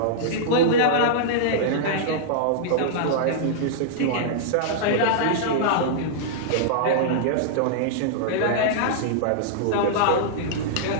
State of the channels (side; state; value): both; different; correlation -0.02